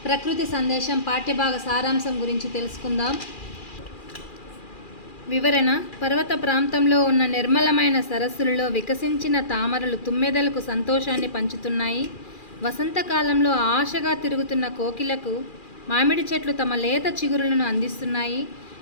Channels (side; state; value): right; late; 2.4 ms